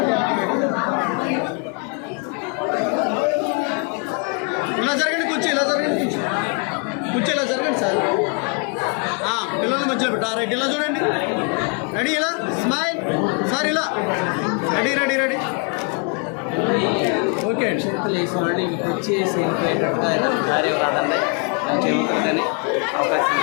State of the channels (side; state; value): right; quieter; 36.6 dB